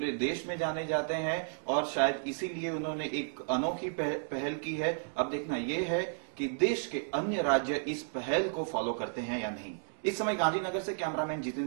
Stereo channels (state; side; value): silent; left; digital silence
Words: देश में जाने जाते हैं और शायद इसीलिए उन्होंने एक अनोखी पहल की है। अब देखना यह है कि देश के अन्य राज्य इस पहल को फॉलो करते हैं या नहीं। इस समय गांधीनगर से कैमरामैन